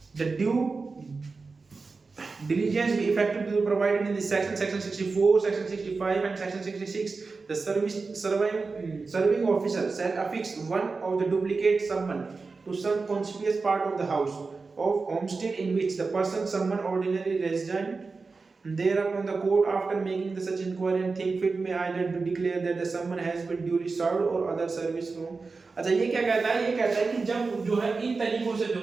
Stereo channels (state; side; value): quieter; left; 4.2 dB